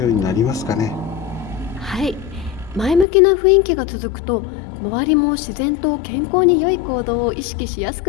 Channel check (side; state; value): right; drops out; at 3.1 s